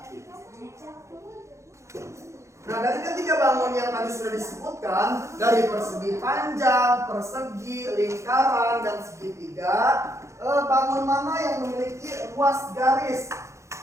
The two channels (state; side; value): late; left; 0.14 ms